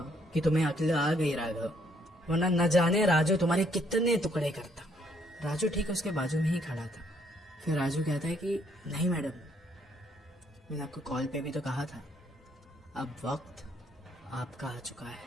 कि तुम्हें अक्ल आ गई राघव, वरना न जाने राजू तुम्हारे कितने टुकड़े करता। राजू ठीक उसके बाजू में ही खड़ा था। फिर राजू कहता है कि नहीं मैडम, मैंने आपको कॉल पे भी तो कहा था अब वक्त आपका आ चुका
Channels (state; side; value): normal; both; correlation 0.69